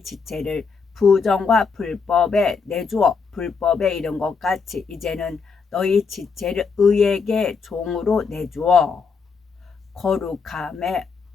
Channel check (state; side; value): quieter; right; 5.2 dB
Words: 지체를 부정과 불법에 내주어 불법에 이른 것 같이 이제는 너희 지체를 의에게 종으로 내주어 거룩함에